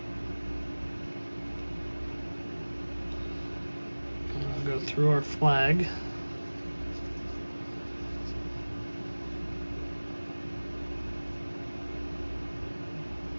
I'll go through our flag.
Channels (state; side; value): inverted; both; correlation -1.00